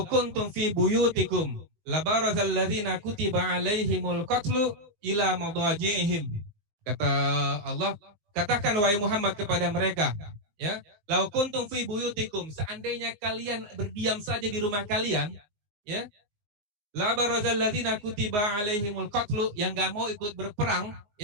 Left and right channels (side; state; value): left; late; 19 ms